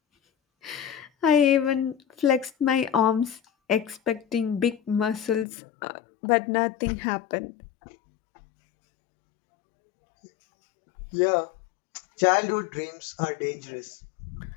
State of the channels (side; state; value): right; drops out; at 5.5 s